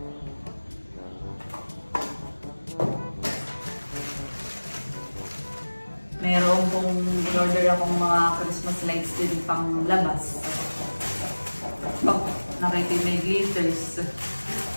Meron pong in-order akong mga Christmas lights din pang labas. Oh, nakita may glitters.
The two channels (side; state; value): both; inverted; correlation -1.00